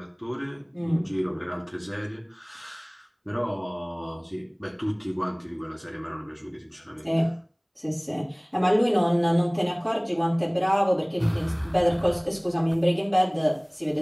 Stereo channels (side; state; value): both; identical; correlation 1.00